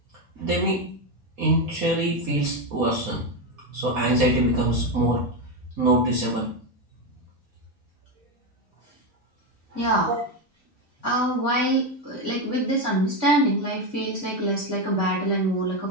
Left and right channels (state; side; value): normal; both; correlation 0.10